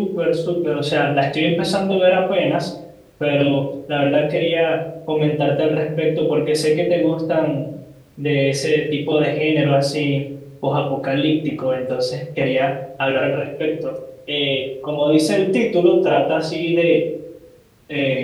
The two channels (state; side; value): identical; both; correlation 1.00